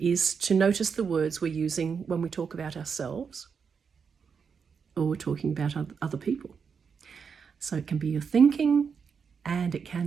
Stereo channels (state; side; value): quieter; left; 6.1 dB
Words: is to notice the words we're using when we talk about ourselves or we're talking about other people. So it can be your thinking, and it